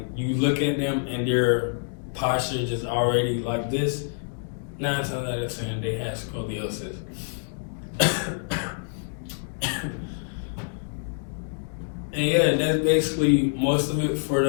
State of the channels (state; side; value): silent; right; digital silence